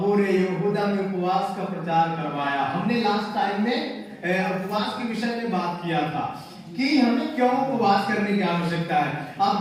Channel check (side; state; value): both; identical; correlation 1.00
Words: यहूदा में उपवास का प्रचार करवाया। हमने लास्ट टाइम में उपवास के विषय में बात किया था कि हमें क्यों उपवास करने की आवश्यकता है।